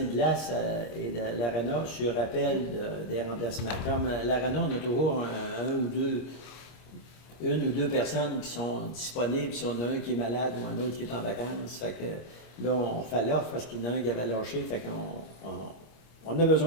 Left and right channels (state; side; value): late; right; 25 ms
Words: glace et de l'ARENA sur appel des remplacements. Comme l'ARENA, on a toujours une ou deux personnes qui sont disponibles, si on a un qui est malade ou un autre qui est en vacances. Fait que là, on fait l'offre parce qu'il y en a un qui avait lâché, fait qu'on a